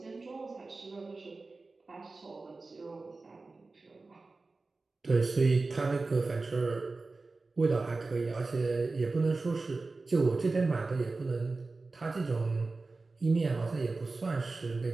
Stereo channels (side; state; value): left; quieter; 3.6 dB